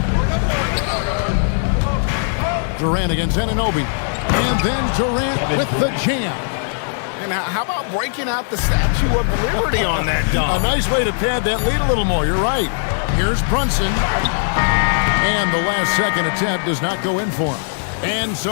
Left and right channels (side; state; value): right; silent; digital silence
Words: Durant against Anunoby. And then Durant with the jam. And how about breaking out the Statue of Liberty on that dunk? A nice way to pad that lead a little more. You're right. Here's Brunson. And the last second attempt does not go in for him. And